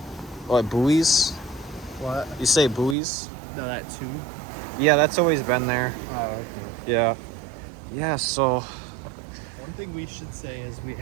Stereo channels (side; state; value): left; drops out; at 3.0 s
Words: What, buoys? What? You say buoys? No, that two? Yeah, that's always been there. Oh, okay. Yeah. Yeah, so One thing we should say is we